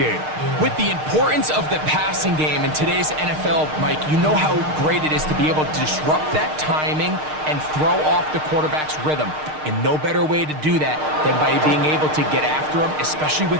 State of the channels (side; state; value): left; late; 6.5 ms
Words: With the importance of the passing game in today's NFL, Mike, you know how great it is to be able to disrupt that timing and throw off the quarterback's rhythm. And no better way to do that than by being able to get after him, especially